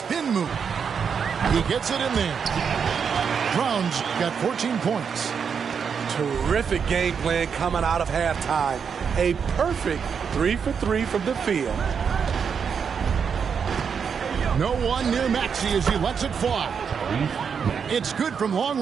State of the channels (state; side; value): quieter; left; 6.6 dB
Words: move. He gets it in there. Brown's got 14 points. Terrific game plan coming out of halftime. A perfect 3 for 3 from the field. No one near Maxey as he lets it fly. It's good from long